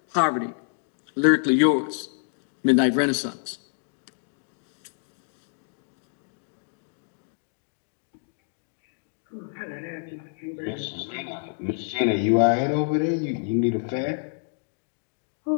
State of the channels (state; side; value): silent; right; 60 dB below the other